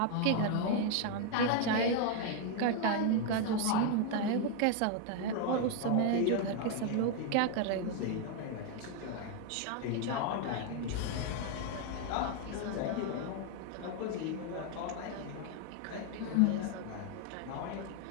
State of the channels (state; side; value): different; both; correlation 0.01